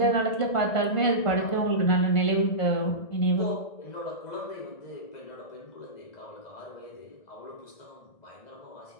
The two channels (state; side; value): late; right; 1.5 ms